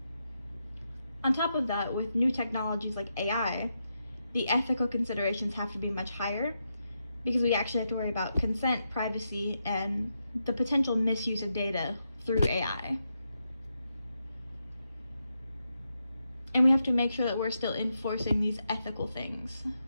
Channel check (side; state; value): both; inverted; correlation -0.85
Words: On top of that, with new technologies like AI, the ethical considerations have to be much higher because we actually have to worry about consent, privacy, and the potential misuse of data through AI. And we have to make sure that we're still enforcing these ethical things,